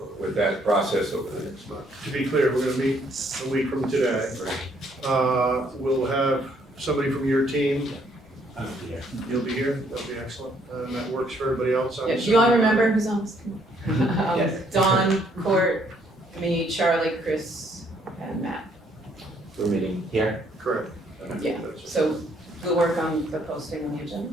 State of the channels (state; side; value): normal; both; correlation 0.67